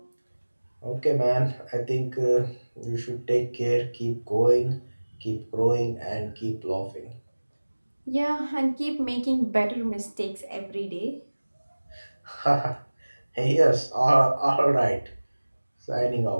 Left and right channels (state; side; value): inverted; both; correlation -1.00